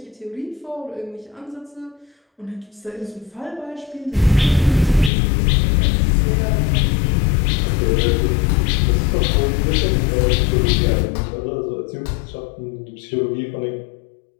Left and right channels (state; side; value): drops out; right; at 5.1 s